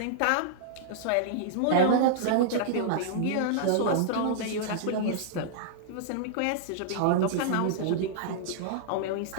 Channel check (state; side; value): different; both; correlation -0.01